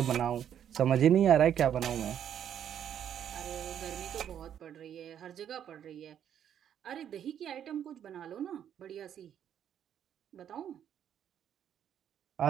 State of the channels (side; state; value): left; quieter; 9.5 dB